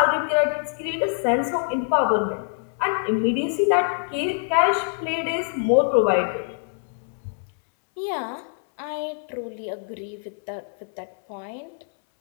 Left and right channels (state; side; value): silent; right; 62 dB below the other